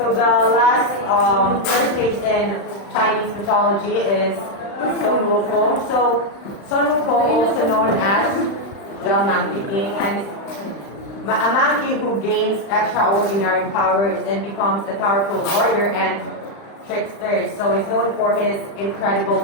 the last first case in Chinese mythology is Sun Wukong. So Sun Wukong, also known as the Monkey King, and is a monkey who gains extraordinary powers and becomes a powerful warrior and trickster. So he's known for his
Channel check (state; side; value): late; right; 35 ms